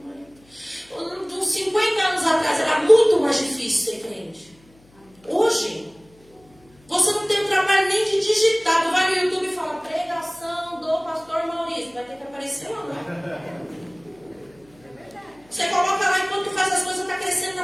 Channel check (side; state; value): left; noise; hum, 29 dB below the sound